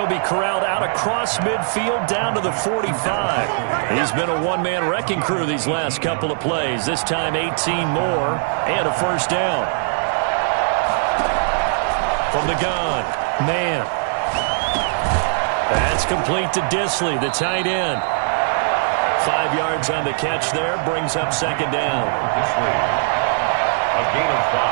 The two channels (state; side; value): silent; left; digital silence